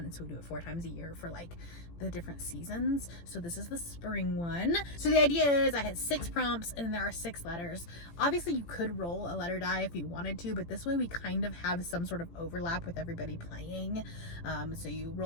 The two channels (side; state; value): right; late; 18 ms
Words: so we do it 4 times a year for the different seasons. So this is the spring one. So the idea is I had 6 prompts and then there are 6 letters. Obviously you could roll a letter die if you wanted to, but this way we kind of have some sort of overlap with everybody playing. So you